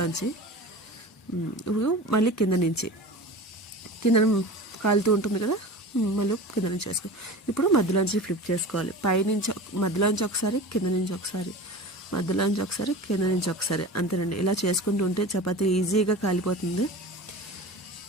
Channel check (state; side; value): normal; both; correlation 0.34